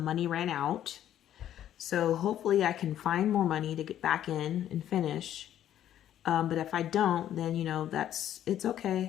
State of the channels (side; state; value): right; quieter; 11.3 dB